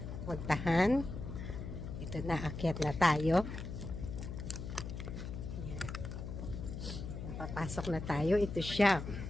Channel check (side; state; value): left; noise; hum, 7 dB below the sound